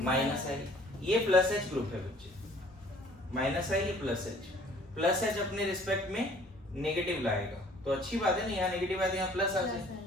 माइनस आई। ये प्लस H ग्रुप है बच्चे, माइनस आई, ये प्लस H अपने रिस्पेक्ट में नेगेटिव लाएगा, तो अच्छी बात है ना, यहाँ नेगेटिव आया तो यहाँ प्लस आ जाए।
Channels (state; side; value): normal; both; correlation 0.55